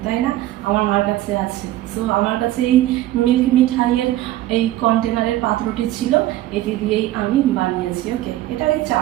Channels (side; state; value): left; quieter; 15.0 dB